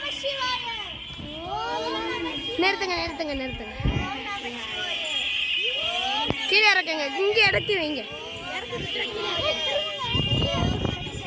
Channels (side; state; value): both; identical; correlation 1.00